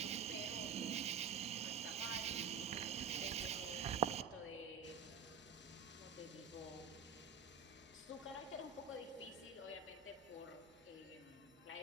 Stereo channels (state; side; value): quieter; left; 5.9 dB